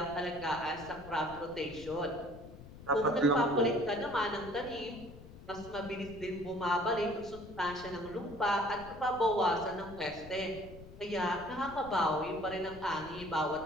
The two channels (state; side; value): noise; left; rumble, 16 dB below the sound